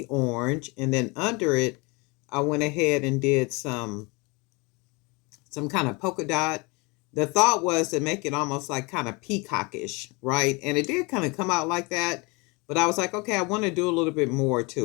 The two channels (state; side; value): quieter; right; 27.6 dB